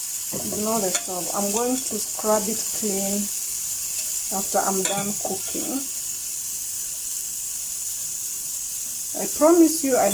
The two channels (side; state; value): both; identical; correlation 1.00